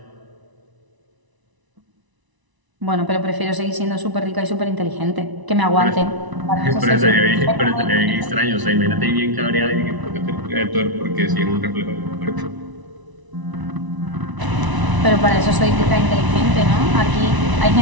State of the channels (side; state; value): left; late; 1.0 ms